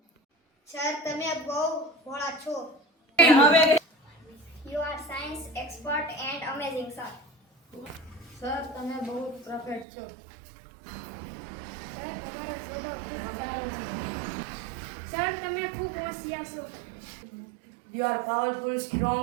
Sir તમે બહુ ભોળા છો. You are science expert and amazing, sir. Sir તમે બહુ પરફેક્ટ છો. સર તમારો સ્વભાવ ખૂબ સારો છે. સર તમે ખૂબ હોશિયાર છો. You are powerful, strong,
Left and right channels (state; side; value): drops out; left; at 9.9 s